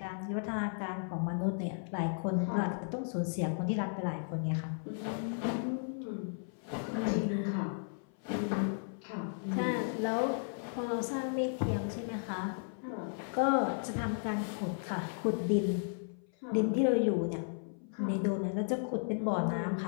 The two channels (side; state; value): right; silent; 55 dB below the other